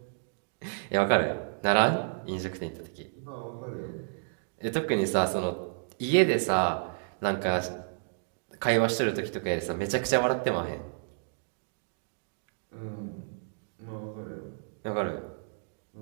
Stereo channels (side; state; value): left; silent; digital silence